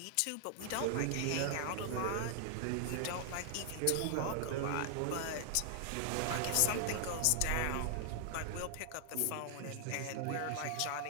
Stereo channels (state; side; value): different; both; correlation 0.00